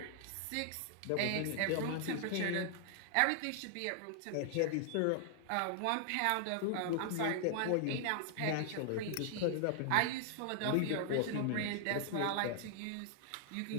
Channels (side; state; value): both; different; correlation 0.00